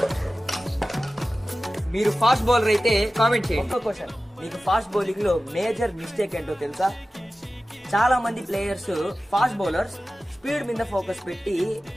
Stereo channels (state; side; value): normal; both; correlation 0.95